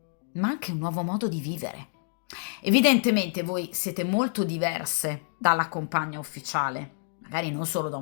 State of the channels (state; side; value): silent; right; digital silence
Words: ma anche un nuovo modo di vivere. Evidentemente voi siete molto diverse dalla compagna ufficiale, magari non solo da